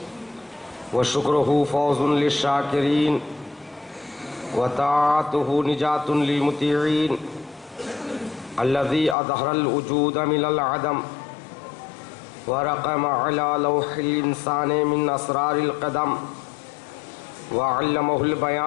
وشکرہ فوز للشاکرین وطاعتہ نجات للمطیعین الذی اظہر الوجود من العدم ورقم علی لوح الانسان من اسرار القدم وعلمہ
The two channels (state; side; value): drops out; right; at 9.2 s